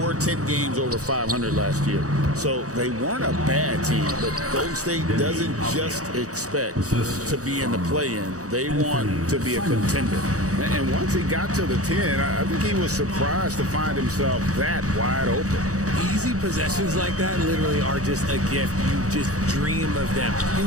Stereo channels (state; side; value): late; left; 0.66 ms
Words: 10 games over 500 last year. So they weren't a bad team, but Golden State doesn't just expect to be in the play-in. They want to be a contender. And once he got to the 10, I think he was surprised to find himself that wide open. Easy possessions like that literally are just a gift. You just dream of them.